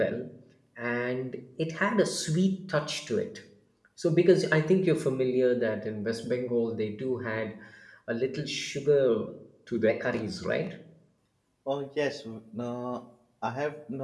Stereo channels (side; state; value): both; identical; correlation 1.00